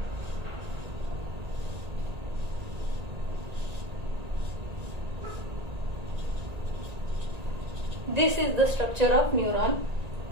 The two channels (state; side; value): late; left; 1.8 ms